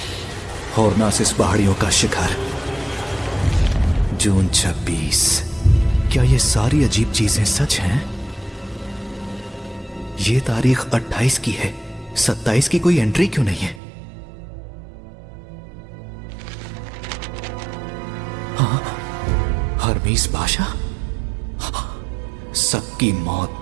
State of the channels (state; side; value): drops out; left; at 13.8 s